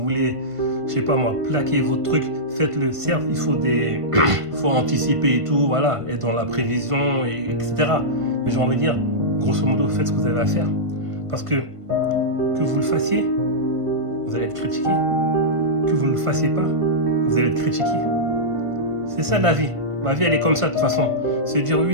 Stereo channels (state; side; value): late; left; 1.5 ms